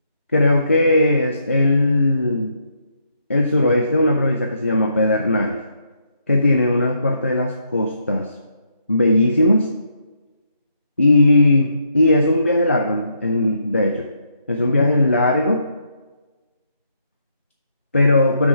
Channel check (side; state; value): both; inverted; correlation -0.76